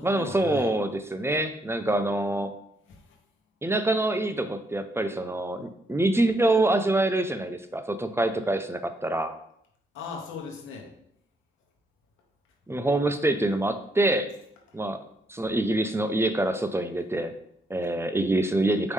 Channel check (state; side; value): normal; both; correlation 0.75